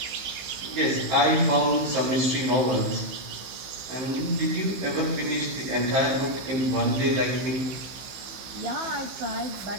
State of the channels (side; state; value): left; late; 15 ms